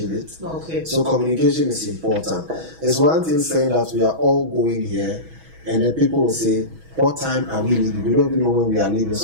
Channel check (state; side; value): late; left; 6.2 ms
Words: it? Okay. So communication is important. It's one thing saying that we are all going here, and then people will say, what time are we leaving? We don't even know when we are leaving.